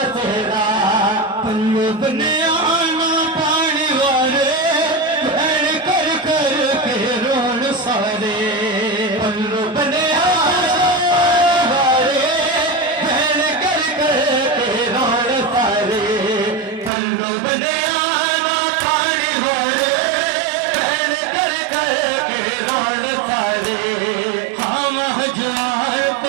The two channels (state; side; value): drops out; left; at 16.9 s